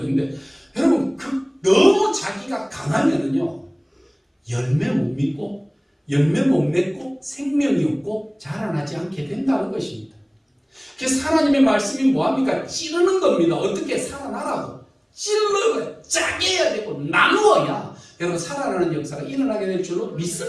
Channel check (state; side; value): identical; both; correlation 1.00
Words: 있는데, 여러분, 너무 자기가 강하면은요, 열매 못 믿고, 열매 못 맺고, 생명이 없고, 자라나지 않게 된다는 것입니다. 그래서 하나님의 말씀이 뭐합니까? 찌르는 겁니다. 어떻게 살아나라고. 찔러야, 짜게 해야 되고, 나누어야, 여러분, 살아나는 역사가 일어나게 될 줄로